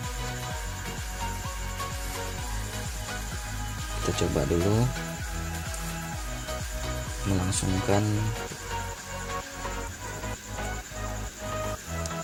Kita coba dulu melangsungkan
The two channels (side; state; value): both; identical; correlation 1.00